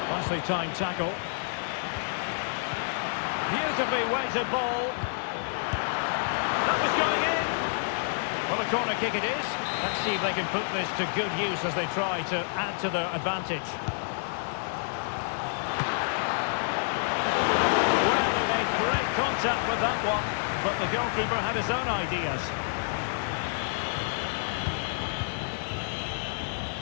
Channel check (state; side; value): silent; right; digital silence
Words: Nicely timed tackle. Beautifully weighted ball. That was going in. Well, a corner kick it is. Let's see if they can put this to good use as they try to add to their advantage. Well, he made great contact with that one, but the goalkeeper had his own ideas.